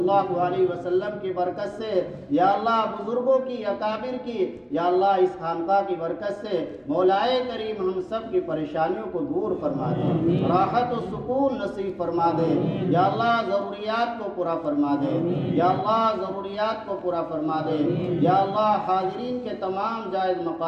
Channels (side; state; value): both; identical; correlation 1.00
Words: علیہ وسلم کی برکت سے، یا اللہ بزرگوں کی اکابر کی، یا اللہ اس خانقاہ کی برکت سے مولائے کریم ہم سب کی پریشانیوں کو دور فرما دے، راحت و سکون نصیب فرما دے، یا اللہ ضروریات کو پورا فرما دے، یا اللہ ضروریات کو پورا فرما دے، یا اللہ حاضرین کے تمام جائز